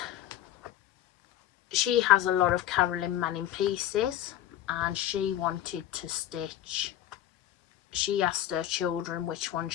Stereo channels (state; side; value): quieter; right; 12.5 dB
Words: has a lot of Carolyn Manning pieces, and she wanted to stitch. She asked her children which one